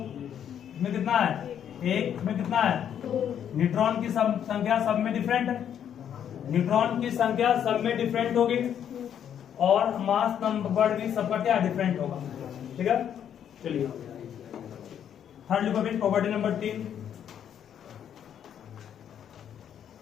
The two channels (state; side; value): quieter; right; 9.2 dB